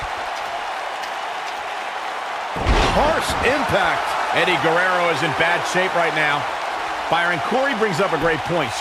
Harsh impact. Eddie Guerrero is in bad shape right now. Byron, Corey brings up a great point.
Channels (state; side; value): identical; both; correlation 1.00